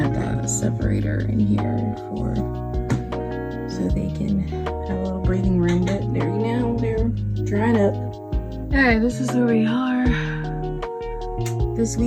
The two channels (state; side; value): identical; both; correlation 1.00